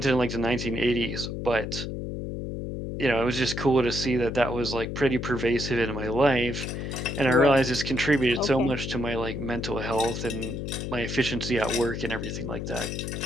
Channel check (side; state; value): left; noise; hum, 5 dB below the sound